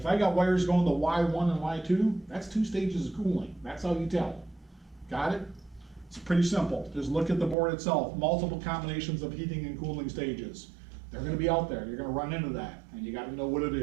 I got wires going to Y1 and Y2, that's two stages of cooling. That's how you tell. Got it? It's pretty simple. Just look at the board itself. Multiple combinations of heating and cooling stages. They're going to be out there. You're going to run into that, and you got to know what it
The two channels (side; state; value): left; drops out; at 7.6 s